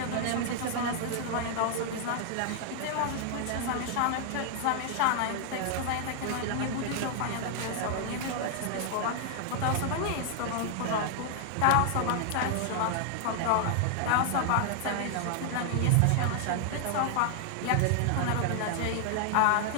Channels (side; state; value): both; different; correlation 0.00